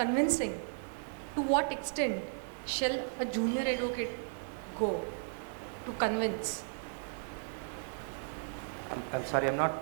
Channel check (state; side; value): silent; left; 54 dB below the other